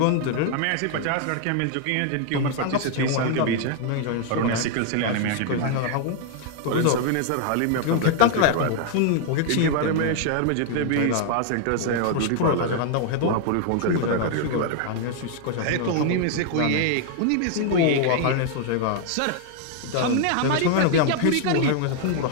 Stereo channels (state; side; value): different; both; correlation 0.00